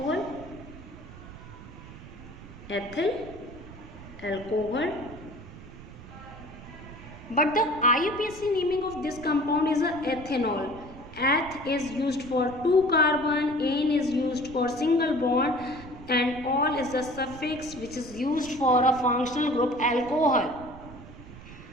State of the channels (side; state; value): right; noise; rumble, 16 dB below the sound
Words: But the IUPAC naming of this compound is a ethanol. Eth is used for 2 carbon, N is used for single bond, and ol is the suffix which is used for a functional group alcohol.